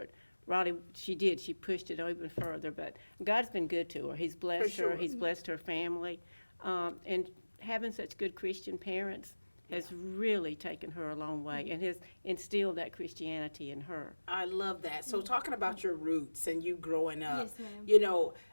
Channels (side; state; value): both; inverted; correlation -1.00